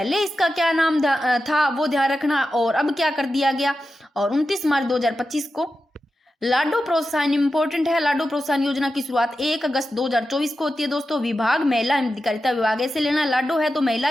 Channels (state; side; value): normal; both; correlation 0.91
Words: इसका क्या नाम था वो ध्यान रखना और अब क्या कर दिया गया। और 29 मार्च 2025 को। लाडो प्रोत्साहन इंपॉर्टेंट है, लाडो प्रोत्साहन योजना की शुरुआत 1 अगस्त 2024 को होती है दोस्तों। विभाग महिला एवं अधिकारिता विभाग, ऐसे लेना, लाडो है तो महिला